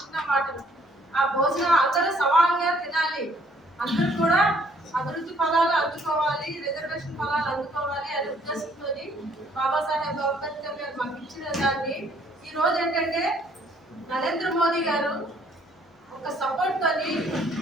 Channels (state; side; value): normal; both; correlation 0.63